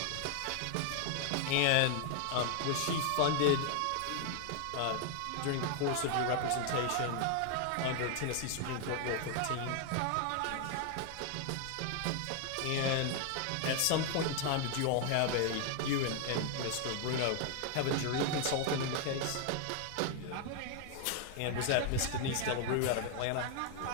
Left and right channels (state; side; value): different; both; correlation 0.00